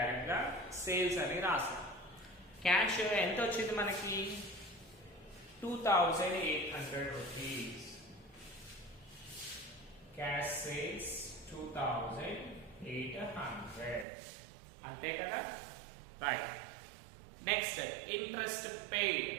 గా సేల్స్ అని రాసాం. క్యాష్ ఎంత వచ్చింది మనకి? 2,800 rupees. Cash sales 2,800. అంతే కదా, రైట్. Next interest paid.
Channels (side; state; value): left; drops out; at 14.1 s